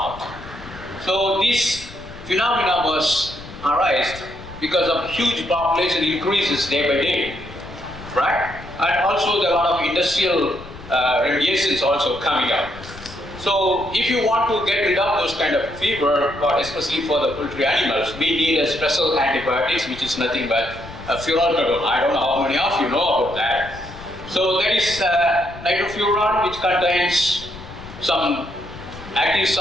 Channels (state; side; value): noise; left; rumble, 16 dB below the sound